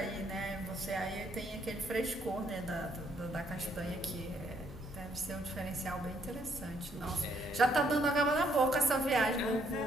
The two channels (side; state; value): both; normal; correlation 0.70